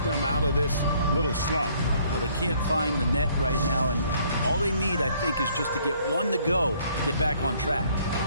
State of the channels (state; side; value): inverted; both; correlation -0.63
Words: them out of this little slump. Well, they can't find the net right now, and all they need, I think, is just to get 1 to go, get back on track.